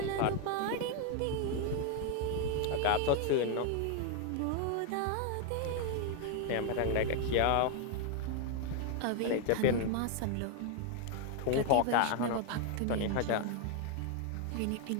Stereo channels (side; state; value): both; different; correlation 0.01